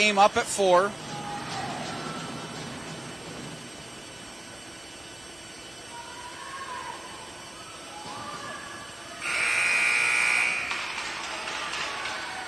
up at 4.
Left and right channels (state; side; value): noise; right; hum, 30 dB below the sound